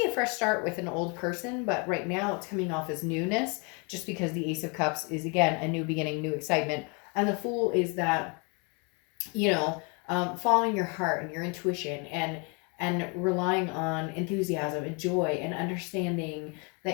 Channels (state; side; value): quieter; right; 33.0 dB